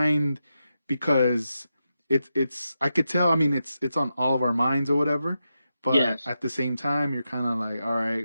because it's I could tell, I mean it's on all of our minds or whatever, but Yes. at the same time you're kind of like, all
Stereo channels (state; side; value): inverted; both; correlation -0.88